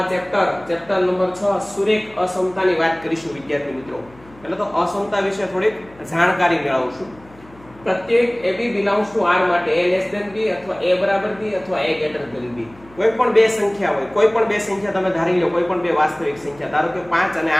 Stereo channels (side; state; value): left; noise; hum, 25 dB below the sound